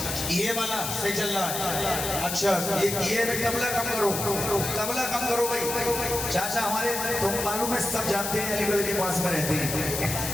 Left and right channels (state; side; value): noise; left; hiss, 4 dB below the sound